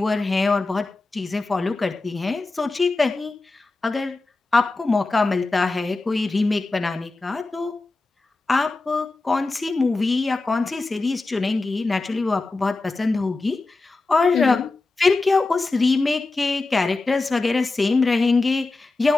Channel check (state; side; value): quieter; right; 3.4 dB